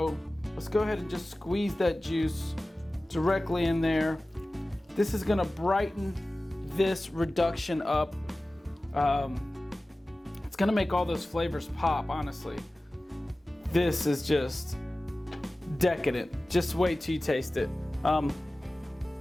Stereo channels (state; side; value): normal; both; correlation 0.97